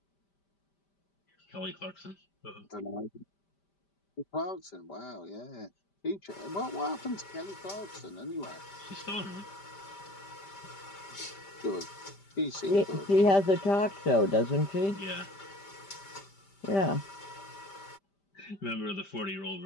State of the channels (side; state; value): right; late; 5.1 ms